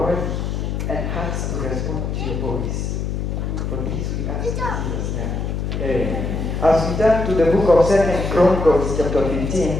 and hearts to respond to your voice. For this we ask in Jesus' name. As we turn to the book of 2 Chronicles chapter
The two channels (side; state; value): left; noise; hum, 2 dB below the sound